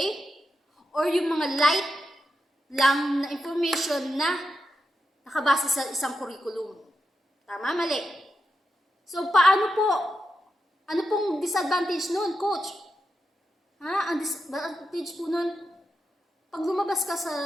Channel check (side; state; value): both; normal; correlation 0.87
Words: Or yung mga light lang na information na nakabase sa isang curriculum. Tama? Mali? So, paano po? Ano pong disadvantage nun, coach? Ang disadvantage po nun, pag lumabas ka